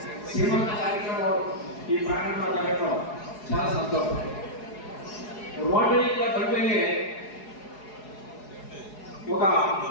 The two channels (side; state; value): right; late; 4.8 ms